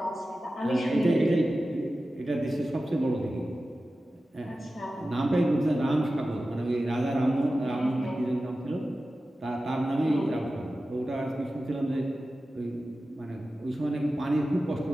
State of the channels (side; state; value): both; normal; correlation 0.94